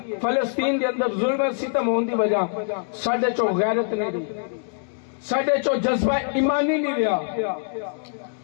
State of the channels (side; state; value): right; silent; digital silence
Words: فلسطین دے اندر ظلم و ستم ہون دی وجہ ساڈے چو غیرت نہیں رہی، ساڈے چو جذبہ ایمانی نہیں رہا،